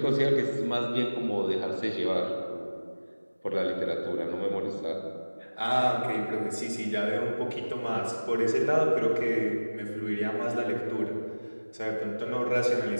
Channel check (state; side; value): inverted; both; correlation -1.00